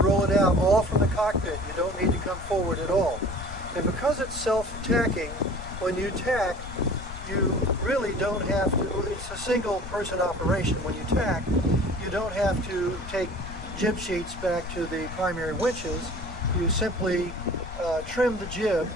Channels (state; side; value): noise; left; rumble, 11 dB below the sound